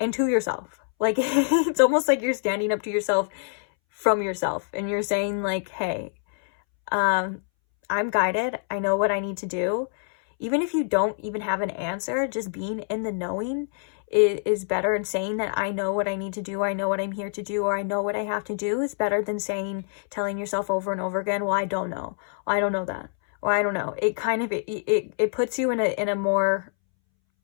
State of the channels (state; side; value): silent; right; 61 dB below the other